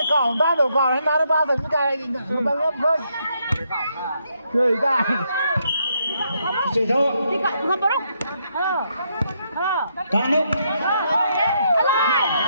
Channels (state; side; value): inverted; both; correlation -0.76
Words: cỏ ba đầu cỏ hay ba ba thành cái ba lớp thôi. Chơi cái. chơi thôi cả nước